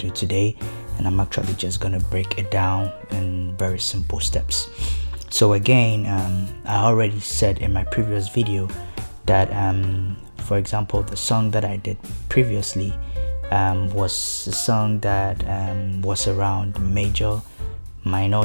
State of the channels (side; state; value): both; inverted; correlation -1.00